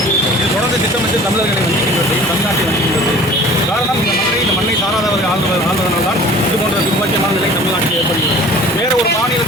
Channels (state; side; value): normal; both; correlation 0.47